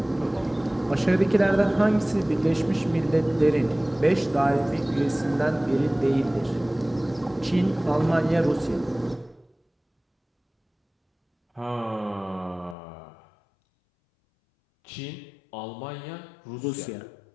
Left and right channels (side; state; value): right; drops out; at 12.8 s